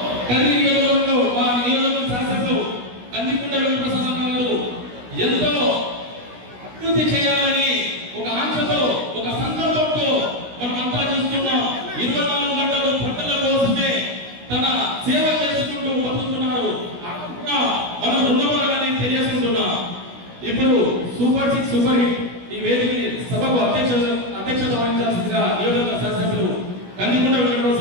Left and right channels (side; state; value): left; late; 16 ms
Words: కదిరి నియోజకవర్గంలో మా నియోజకవర్గ శాసనసభ్యులు కందికుంట వెంకటప్రసాద్ గారు ఎంతో అభివృద్ధి చేయాలని ఒక ఆశతో ఒక సంకల్పంతో మనమంతా చూస్తున్నాం. 24 గంటలు పంటల కోసమే తన సేవ చేసుకుంటూ బతుకుతున్నారు. మనం రుణపడాలని తెలియజేసుకుంటున్నాం. ఇప్పుడు సూపర్ 6 సూపర్ హిట్ ఈ వేదికని సభకు అధ్యక్షత వహించాల్సిందిగా నియోజకవర్గ శాసనసభ్యులు కందికుంట